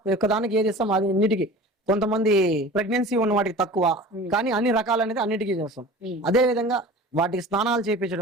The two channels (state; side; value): normal; both; correlation 0.39